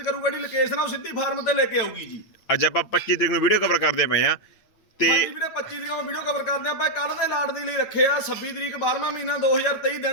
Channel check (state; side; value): late; right; 8.9 ms